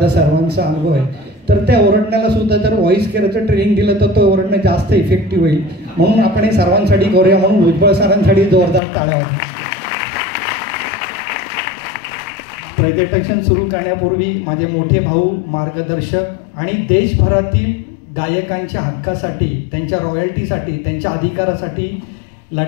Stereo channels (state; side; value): drops out; right; at 8.8 s